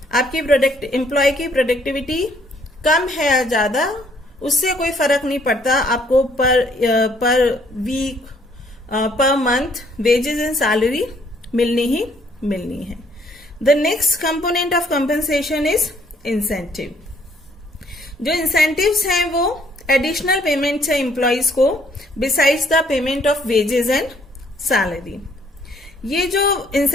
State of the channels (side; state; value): both; normal; correlation 0.64